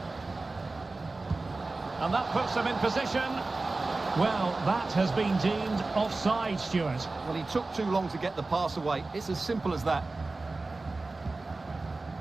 And that puts them in position. Well, that has been deemed offside, Stuart. Well, he took too long to get the pass away. It's as simple as that.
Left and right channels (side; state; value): left; quieter; 3.4 dB